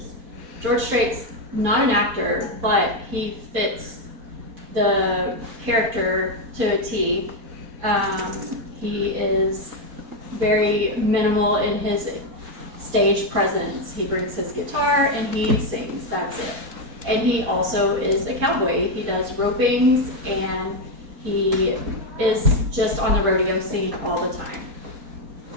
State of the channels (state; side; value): late; left; 4.4 ms